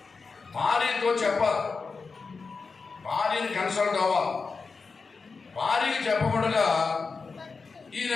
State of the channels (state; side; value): quieter; right; 4.6 dB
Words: భార్యతో చెప్పాలి, భార్యని కన్సల్ట్ అవ్వాలి. భార్యకి చెప్పకుండా ఈయన